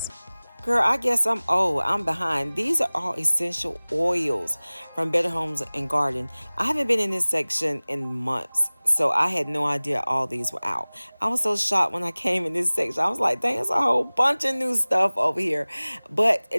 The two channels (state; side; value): inverted; both; correlation -1.00